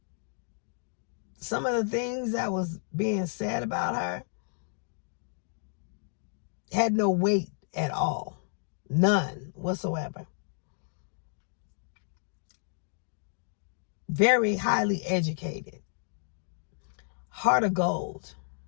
some of the things that was being said about her had no weight at all. None whatsoever. Very highly educated. Heart of gold.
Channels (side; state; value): right; silent; digital silence